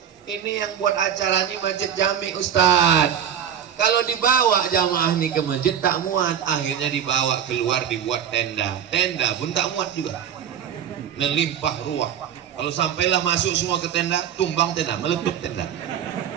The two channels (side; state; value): left; quieter; 8.9 dB